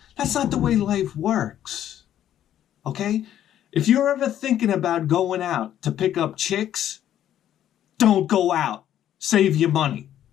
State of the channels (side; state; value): right; quieter; 11.2 dB